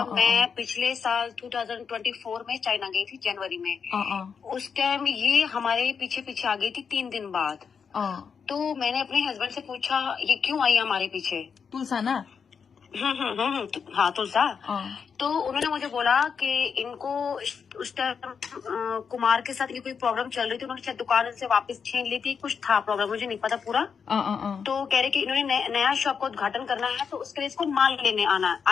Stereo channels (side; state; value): right; quieter; 6.3 dB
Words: मैं पिछले साल 2024 में चाइना गई थी, जनवरी में। उस टाइम ये हमारे पीछे पीछे आ गई थी 3 दिन बाद। तो मैंने अपने हस्बैंड से पूछा ये क्यों आई हमारे पीछे। तुलसा ना? हाँ, तुलसा। तो उन्होंने मुझे बोला कि इनको उस टाइम कुमार के साथ इनकी कोई प्रॉब्लम चल रही थी। उन्होंने शायद दुकान से वापस छीन ली थी, कुछ था प्रॉब्लम, मुझे नहीं पता पूरा। तो कह रहे कि इन्होंने नया शॉप का उद्घाटन करना है, तो उसके लिए इसको माल लेने आना